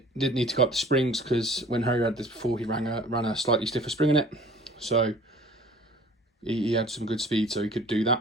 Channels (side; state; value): both; normal; correlation 0.49